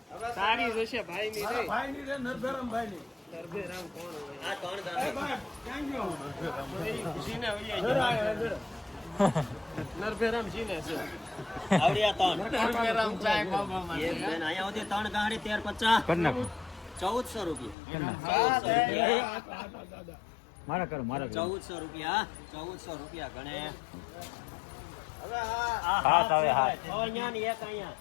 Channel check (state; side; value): drops out; right; at 17.8 s